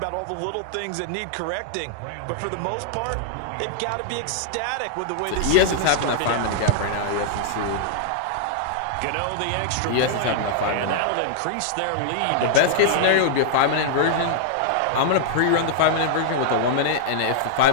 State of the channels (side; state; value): both; different; correlation -0.01